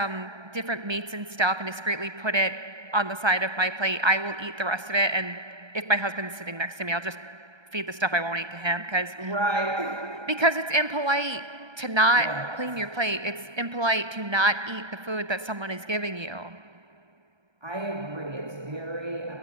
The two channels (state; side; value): late; left; 1.3 ms